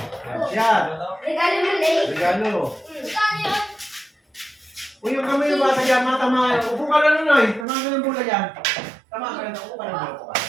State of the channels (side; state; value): left; drops out; at 7.7 s